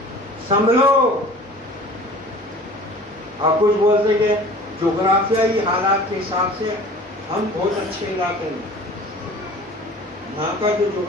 سنبھلو. آپ کچھ بولتے کہ جغرافیائی حالات کے حساب سے ہم بہت اچھے علاقے میں، یہاں کا جو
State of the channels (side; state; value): both; normal; correlation 0.44